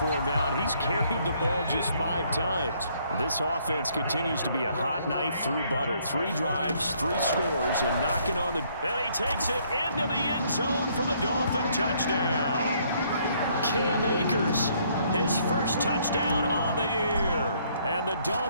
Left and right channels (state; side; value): inverted; both; correlation -0.67